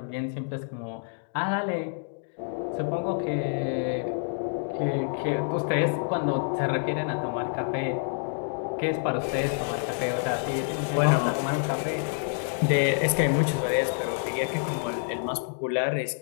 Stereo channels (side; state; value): right; silent; digital silence